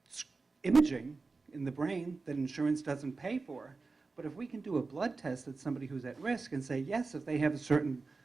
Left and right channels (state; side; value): quieter; left; 4.0 dB